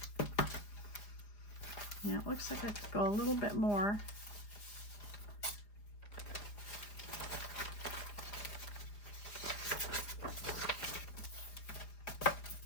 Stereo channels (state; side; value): late; right; 4.9 ms